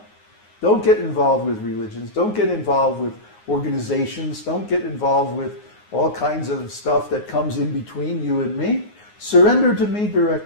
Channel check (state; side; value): late; right; 9.6 ms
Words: Don't get involved with religions. Don't get involved with organizations. Don't get involved with all kinds of stuff that comes in between you and me. Surrender to me